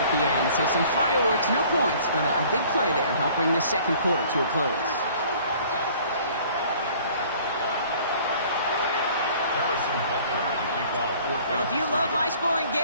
the end. So some fireworks, no points, but a big play there. Help bring this second quarter to a close. Well, if you love high-scoring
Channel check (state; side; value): inverted; both; correlation -0.53